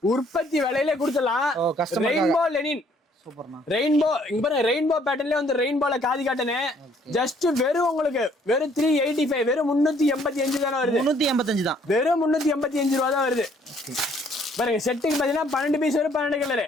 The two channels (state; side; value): normal; both; correlation 0.63